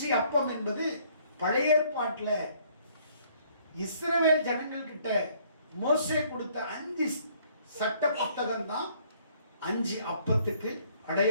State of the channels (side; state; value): both; inverted; correlation -0.62